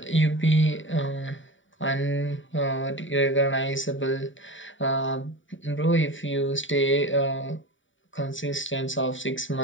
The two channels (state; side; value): late; right; 0.56 ms